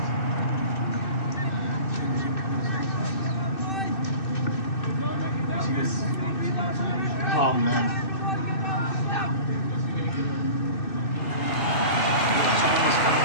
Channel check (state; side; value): late; right; 2.6 ms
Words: Oh, man. Someone was coming